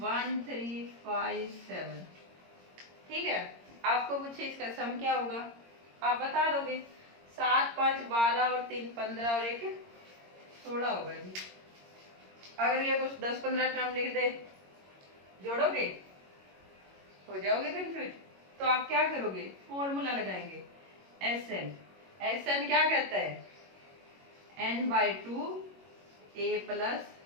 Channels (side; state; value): left; late; 22 ms